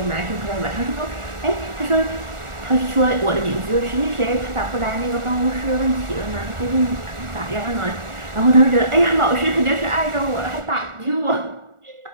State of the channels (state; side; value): late; left; 1.4 ms